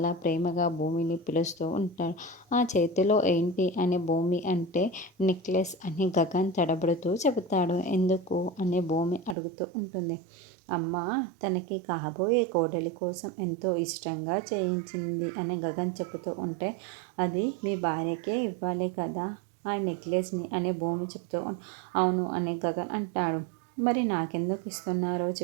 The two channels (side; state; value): left; drops out; at 9.3 s